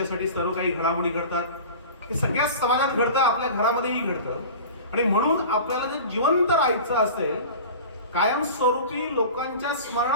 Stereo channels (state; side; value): inverted; both; correlation -0.37